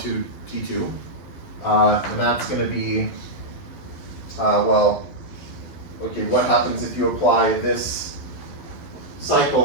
T2. And that's going to be, okay, what happens if you apply this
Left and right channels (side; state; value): right; late; 11 ms